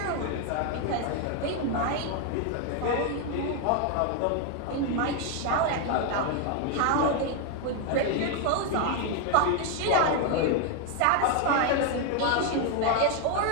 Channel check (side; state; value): both; different; correlation 0.01